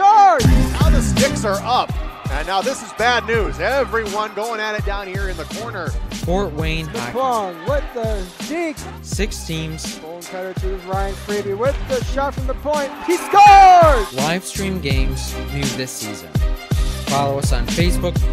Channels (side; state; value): both; identical; correlation 1.00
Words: Now the sticks are up. And now this is bad news. Everyone going at it down here in the corner. Fort Wayne Hockey with the deke. 6 teams. Bone cutter to Ryan Freeby with the shot from the point. He scores! Live stream games new this season. Follow us on Facebook,